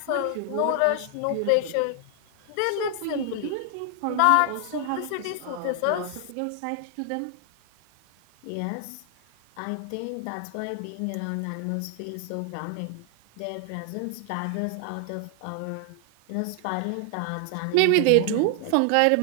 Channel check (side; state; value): both; different; correlation 0.00